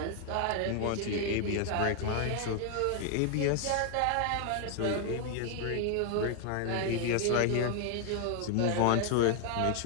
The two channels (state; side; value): different; both; correlation 0.00